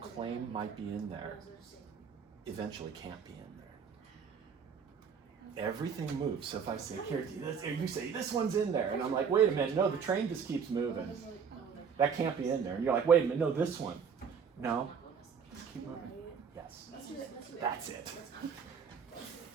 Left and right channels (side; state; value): left; quieter; 6.5 dB